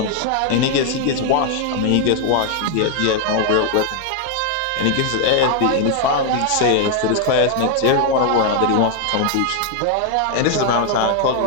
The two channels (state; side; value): different; both; correlation 0.00